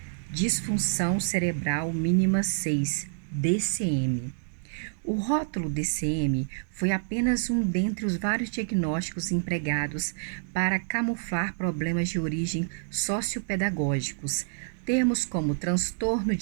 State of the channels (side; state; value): left; silent; digital silence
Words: disfunção cerebral mínima 6, DCM. O rótulo DCM foi apenas um dentre os vários diagnósticos empregados para camuflar problemas de origem sociopedagógicos. Termos como transtorno